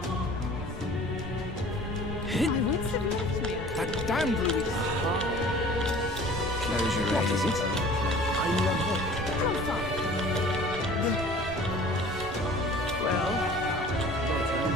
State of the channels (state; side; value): normal; both; correlation 0.46